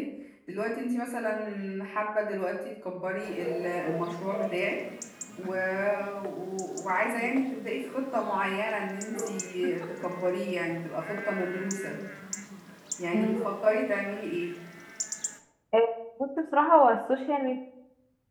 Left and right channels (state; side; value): identical; both; correlation 1.00